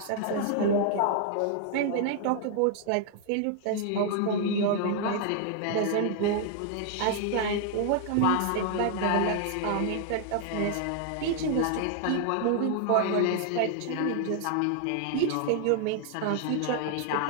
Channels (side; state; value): both; different; correlation 0.00